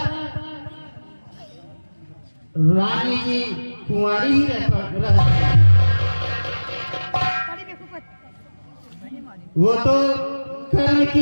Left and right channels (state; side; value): inverted; both; correlation -1.00